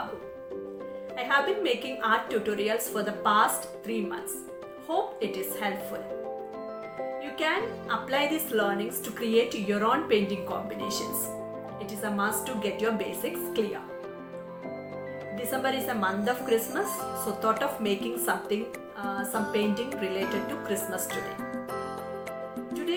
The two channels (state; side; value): identical; both; correlation 1.00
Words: I have been making art tutorials for the past 3 months. Hope it is helpful. You can apply these learnings to create your own painting combinations. It is a must to get your basics clear. December is a month of Christmas, so thought of making some painting related to Christmas today.